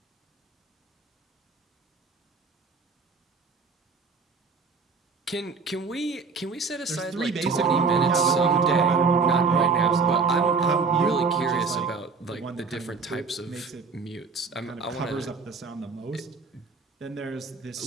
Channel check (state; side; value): quieter; left; 4.8 dB